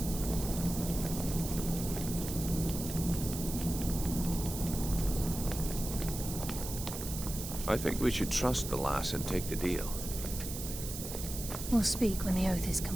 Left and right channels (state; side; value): noise; right; hiss, 8 dB below the sound